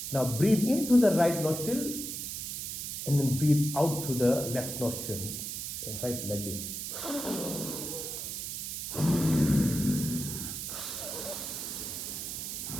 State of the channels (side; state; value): right; noise; hiss, 5 dB below the sound